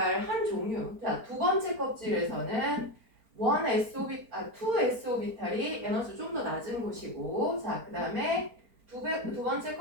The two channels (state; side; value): late; left; 4.4 ms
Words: 한 종류. 자, 두 번째 껍질에서는 2s 오비탈이 에너지 좀 더 낮은 곳이고, 자, 그 다음에 두 번째